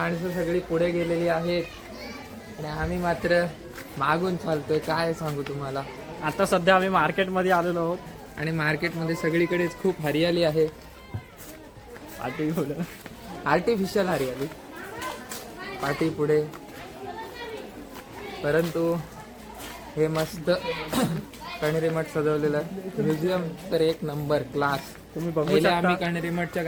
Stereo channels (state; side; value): identical; both; correlation 1.00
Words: सगळी पुढे गेलेली आहेत आणि आम्ही मात्र मागून चालतोय. काय सांगू तुम्हाला. आता सध्या आम्ही मार्केटमध्ये आलेलो आहोत. आणि मार्केटमध्ये सगळीकडेच खूप हरियाली आहे, आर्टिफिशियल हरियाली पाठी पुढे. परंतु हे मस्त कण्हेरी मठ सजवलेलं आहे. म्युझियम तर एक नंबर क्लास. तुम्ही बघू पहिले शकता. आम्ही कण्हेरी मठच्या